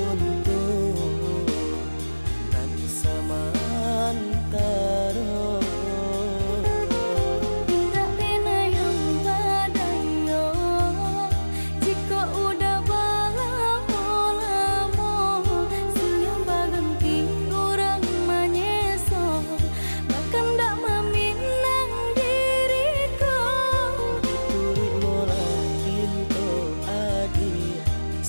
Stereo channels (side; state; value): both; inverted; correlation -1.00